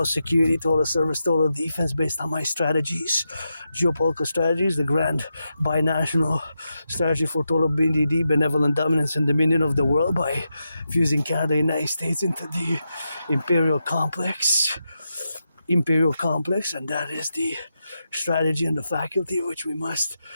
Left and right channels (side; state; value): both; inverted; correlation -0.87